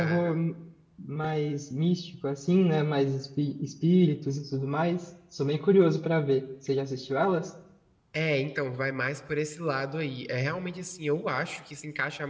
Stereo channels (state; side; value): identical; both; correlation 1.00